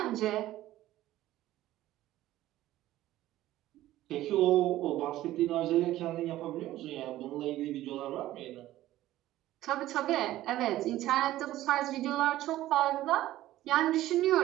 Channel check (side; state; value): left; quieter; 14.9 dB